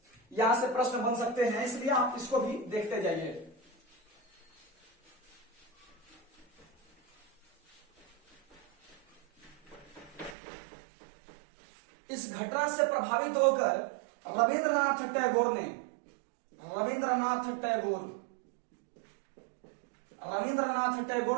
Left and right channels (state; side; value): drops out; left; at 10.4 s